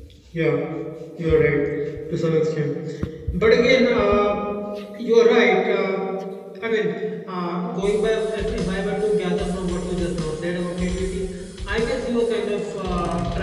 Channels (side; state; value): both; identical; correlation 1.00